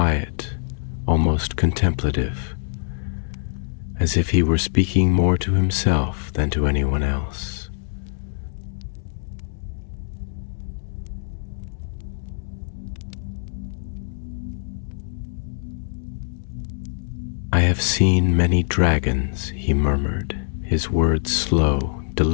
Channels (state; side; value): silent; right; digital silence